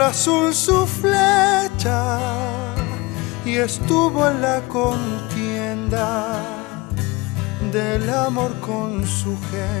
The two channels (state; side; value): quieter; right; 24.0 dB